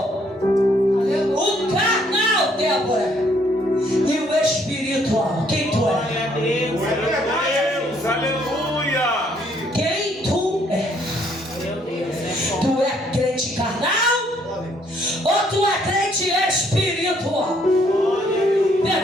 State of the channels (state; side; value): normal; both; correlation 0.67